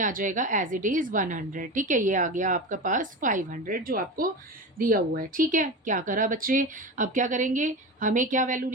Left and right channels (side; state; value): both; normal; correlation 0.25